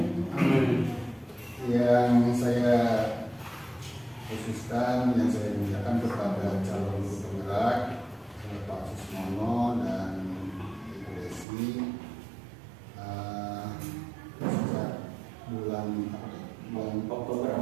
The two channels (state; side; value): drops out; left; at 11.5 s